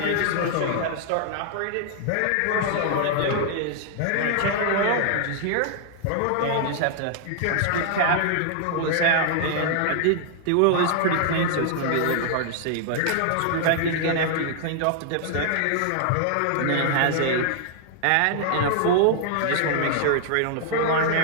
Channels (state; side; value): different; both; correlation -0.01